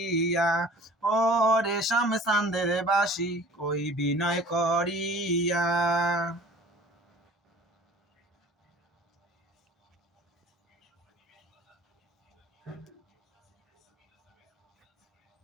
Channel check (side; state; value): both; normal; correlation 0.46